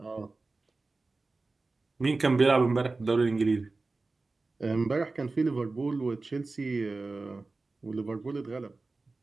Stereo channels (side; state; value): left; quieter; 3.5 dB